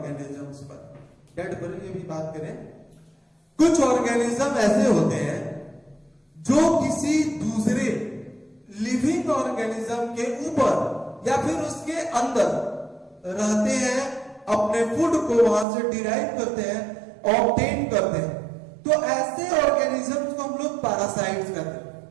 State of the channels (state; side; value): drops out; left; at 15.7 s